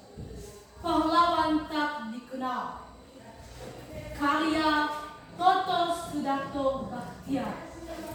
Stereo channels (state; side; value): identical; both; correlation 1.00